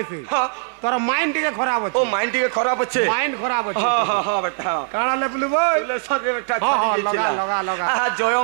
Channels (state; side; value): silent; left; 64 dB below the other